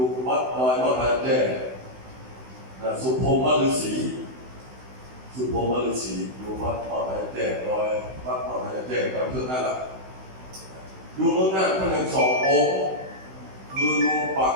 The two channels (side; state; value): left; late; 16 ms